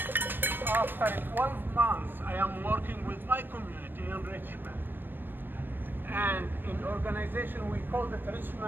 After 12 months, I am working with my community in Richmond. And in organization, we call it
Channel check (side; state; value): left; late; 0.095 ms